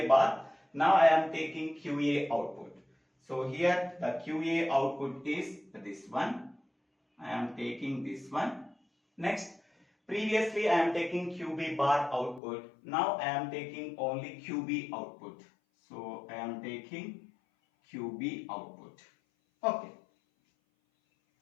bar, now I am taking QA output. So here the QA output is this one, I am taking this one. Next, previously I am taking QB bar output, now I am taking only QB output. So I am taking QB output. Okay,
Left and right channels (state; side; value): drops out; right; at 12.4 s